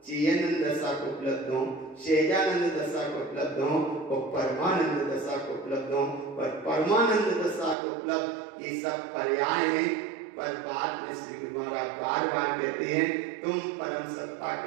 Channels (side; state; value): left; drops out; at 7.8 s